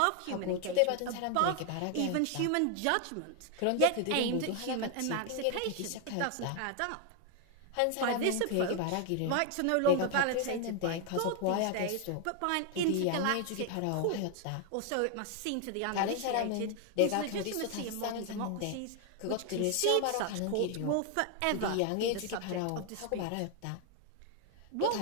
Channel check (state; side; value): different; both; correlation 0.00